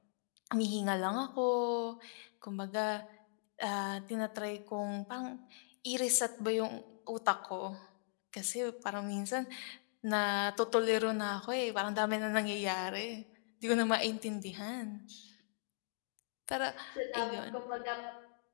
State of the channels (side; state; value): right; silent; digital silence